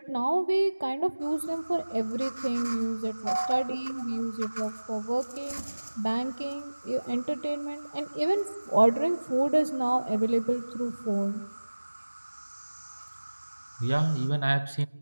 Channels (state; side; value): inverted; both; correlation -1.00